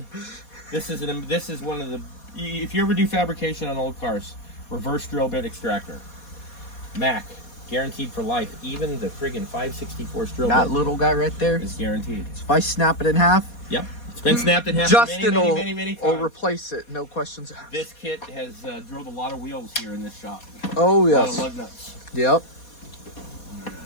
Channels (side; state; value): right; late; 4.2 ms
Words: this is one of the, if you ever do fabrication on old cars, reverse drill bit extractor. Mac, guaranteed for life. Even the friggin' 5/64 drill That bit little guy right there. is guaranteed. If I snap it in half, Yep, it's been snapped in half Justin many will times. replace it. No questions asked. This kit has drilled a lot of wheels here in this shop. Oh, A lot of yes. lug nuts. Yep.